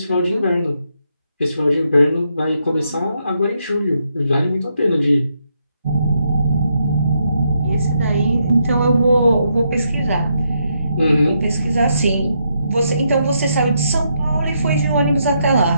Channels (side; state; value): both; inverted; correlation -0.79